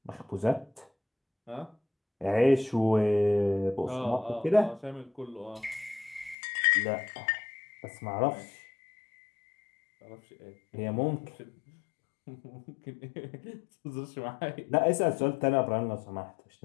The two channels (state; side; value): drops out; right; at 6.4 s